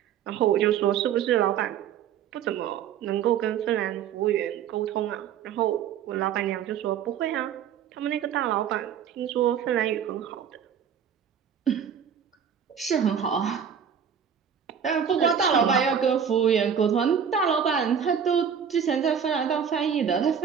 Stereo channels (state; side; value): quieter; left; 7.9 dB